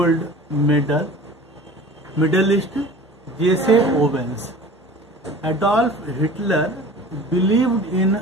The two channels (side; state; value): both; normal; correlation 0.40